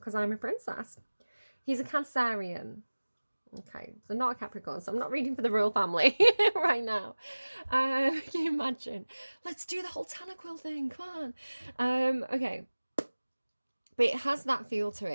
I'm a princess. He's a Cancerian. Okay, so not a Capricorn, so I'm not reading for the royal family right now. Can you imagine? Let's do the whole Tanaquil thing, come on. Okay. But it has that feel to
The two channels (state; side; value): inverted; both; correlation -1.00